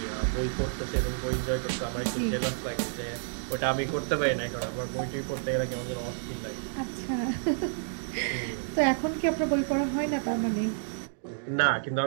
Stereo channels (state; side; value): silent; left; digital silence